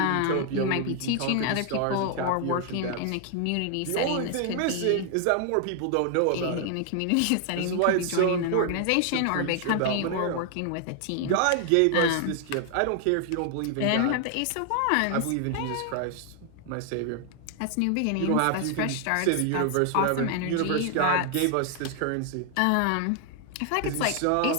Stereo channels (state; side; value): different; both; correlation 0.00